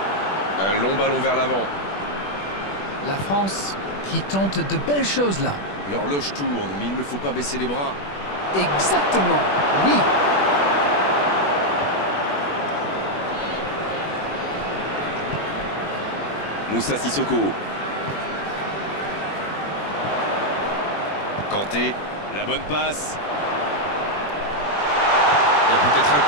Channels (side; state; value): right; late; 21 ms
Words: Un long ballon vers l'avant. La France qui tente de belles choses là. L'horloge tourne, mais il ne faut pas baisser les bras. Exactement, oui. Moussa Sissoko. Kanté. La bonne passe. Il y a peut-être un